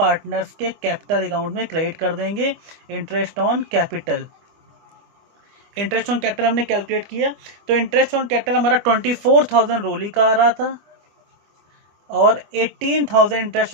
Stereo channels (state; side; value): late; left; 25 ms